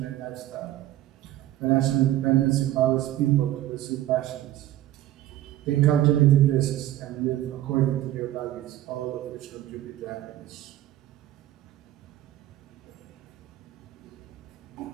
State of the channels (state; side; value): quieter; left; 14.0 dB